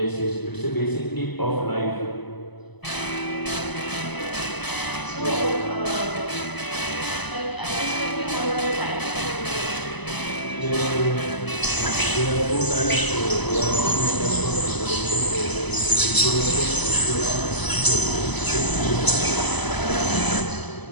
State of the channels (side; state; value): right; late; 0.99 ms